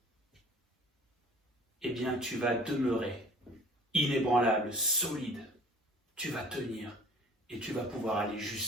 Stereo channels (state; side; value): normal; both; correlation 0.49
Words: tu vas demeurer inébranlable, solide. Tu vas tenir et tu vas pouvoir aller